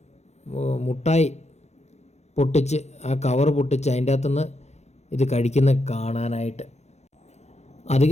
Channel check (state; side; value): late; right; 0.32 ms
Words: മുട്ടായി പൊട്ടിച്ച് ആ കവർ പൊട്ടിച്ച് അതിൻ്റെ അകത്തുനിന്ന് ഇത് കഴിക്കുന്ന കാണാനായിട്ട്.